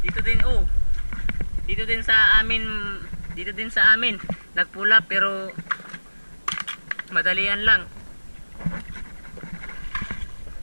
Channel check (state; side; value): inverted; both; correlation -1.00